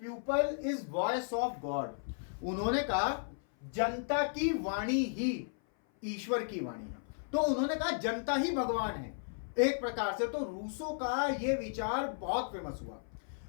people is voice of God. उन्होंने कहा जनता की वाणी ही ईश्वर की वाणी है। तो उन्होंने कहा जनता ही भगवान है एक प्रकार से। तो रूसो का यह विचार बहुत फेमस हुआ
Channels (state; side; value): silent; right; 55 dB below the other